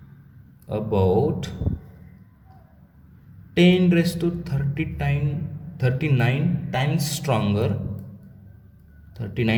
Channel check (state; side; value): identical; both; correlation 1.00